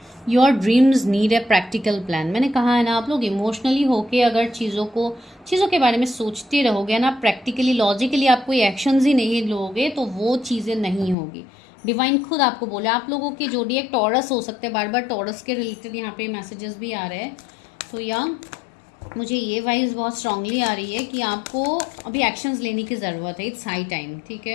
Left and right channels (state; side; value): drops out; right; at 11.2 s